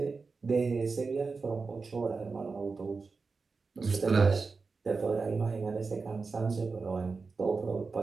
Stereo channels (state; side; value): quieter; left; 4.4 dB